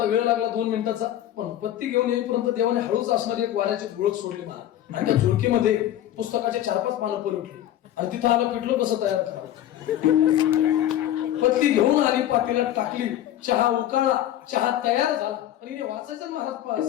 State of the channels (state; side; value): quieter; right; 12.3 dB